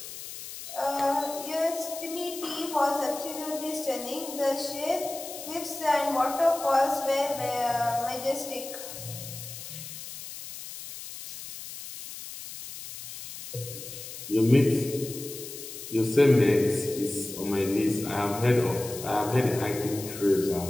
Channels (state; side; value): noise; left; hiss, 11 dB below the sound